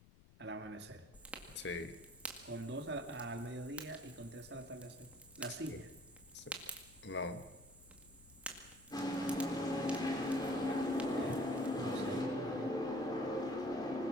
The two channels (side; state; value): left; noise; rumble, 23 dB below the sound